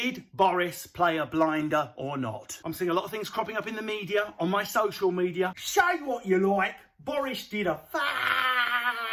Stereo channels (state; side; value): identical; both; correlation 1.00